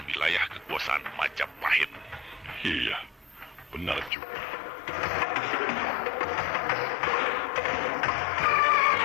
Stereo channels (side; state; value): right; drops out; at 4.1 s